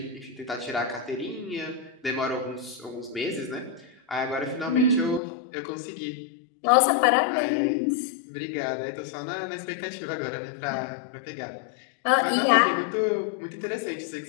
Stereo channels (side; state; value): right; drops out; at 5.2 s